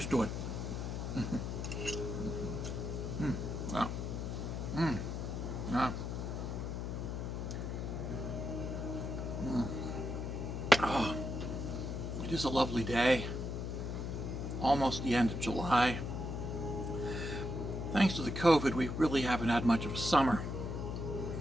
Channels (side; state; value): left; noise; hum, 3 dB below the sound